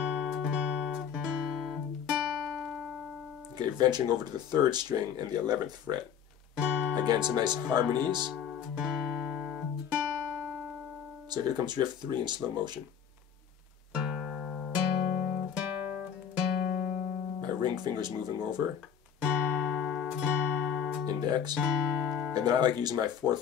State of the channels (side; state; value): right; quieter; 8.1 dB